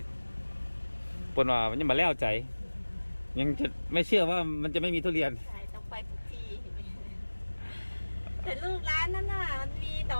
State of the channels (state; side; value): inverted; both; correlation -1.00